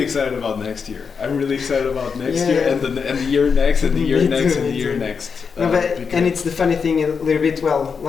excited about next year. I'm really excited about next year and the year next and the year next and the year next. No, and it's the funny thing a little bit, well,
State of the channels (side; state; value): right; quieter; 5.8 dB